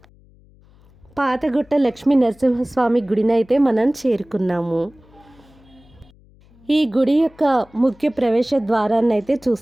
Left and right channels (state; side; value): noise; left; hum, 28 dB below the sound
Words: పాతగుట్ట లక్ష్మీ నరసింహస్వామి గుడినైతే మనం చేరుకున్నాము. ఈ గుడి యొక్క ముఖ్య ప్రవేశ ద్వారాన్ని అయితే